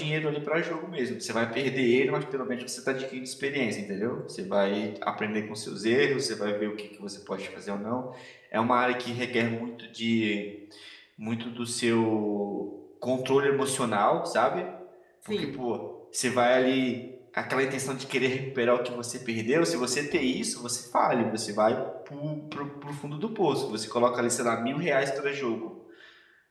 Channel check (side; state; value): both; identical; correlation 1.00